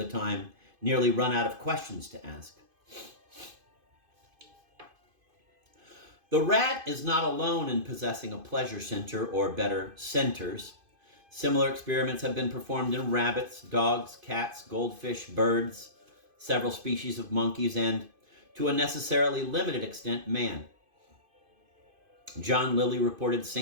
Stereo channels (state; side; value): late; left; 2.5 ms